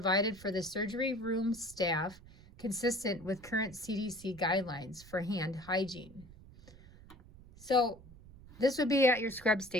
for the surgery room staff consistent with current CDC guidelines for hand hygiene. So this would be at your scrub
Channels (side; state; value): right; noise; rumble, 20 dB below the sound